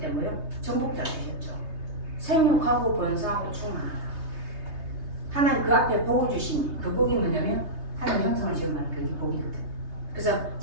뭐요? 정복자 되셨죠. 생육하고 번성하고 충만하다. 하나님 그 앞에 복을 주시니 그 복이 뭐냐면 하나님 형상을 지음하는 그게 복이거든. 그래서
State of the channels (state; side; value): late; left; 3.3 ms